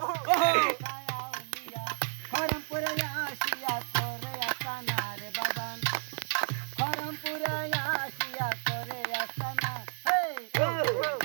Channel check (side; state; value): left; silent; digital silence